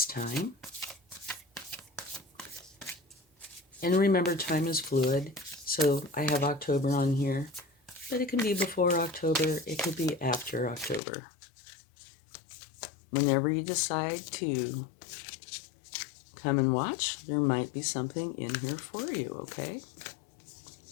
time. And remember, time is fluid, so I have October on here, but it can be before October, it could be after October. Whenever you decide to come and watch, there might be something in here for you, okay?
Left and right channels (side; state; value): right; drops out; at 11.0 s